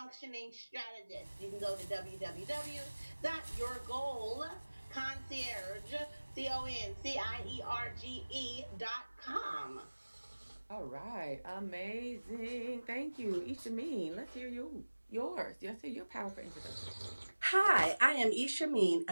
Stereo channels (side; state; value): both; inverted; correlation -1.00